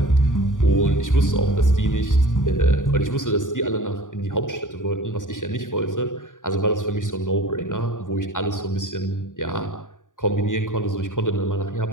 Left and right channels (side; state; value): right; late; 0.88 ms